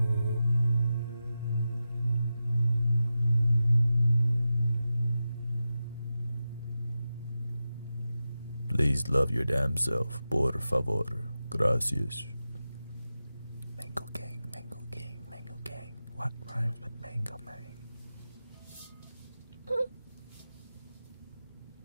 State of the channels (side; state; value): both; inverted; correlation -0.92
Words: Please love your damn self, por favor. Gracias. Mango gang, mango gang, mango gang. What rhymes with mango man?